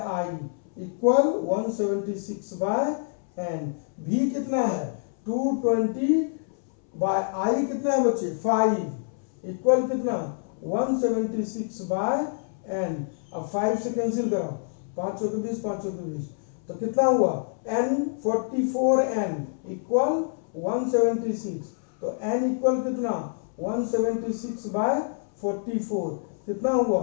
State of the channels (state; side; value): silent; right; 60 dB below the other